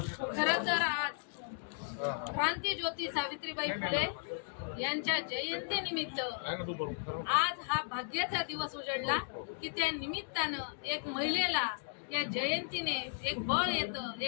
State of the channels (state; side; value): silent; right; digital silence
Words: खरं तर आज क्रांतीज्योती सावित्रीबाई फुले यांच्या जयंतीनिमित्त आज हा भाग्याचा दिवस उजळला की त्या निमित्तानं एक महिलेला या जयंतीने एक बळ येतं,